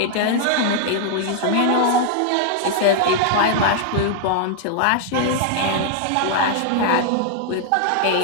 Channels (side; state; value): both; different; correlation 0.00